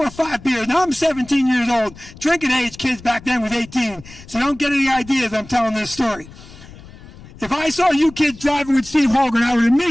or 5 beers. Now I'm 17 years old. Drinking age kids back then was 18, so don't get any ideas I'm telling this story. If I saw you kids driving with Steve Holgren, I would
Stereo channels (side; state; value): left; noise; rumble, 19 dB below the sound